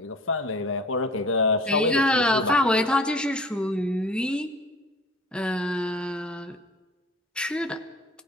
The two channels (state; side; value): normal; both; correlation 0.44